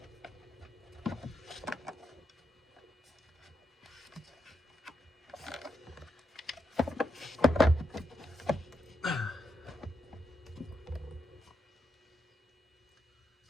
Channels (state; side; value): normal; both; correlation 0.83